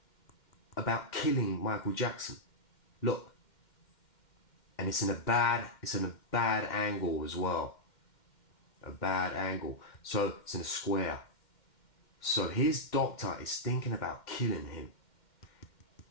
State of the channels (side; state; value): right; late; 2.1 ms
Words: about killing Michael Jackson. Look. And it's in a bad angle as well. A bad angle. So it's in a square. So his doctor is thinking about killing him.